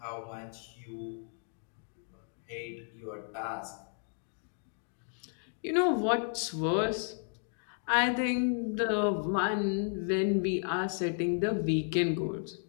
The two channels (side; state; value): right; silent; 56 dB below the other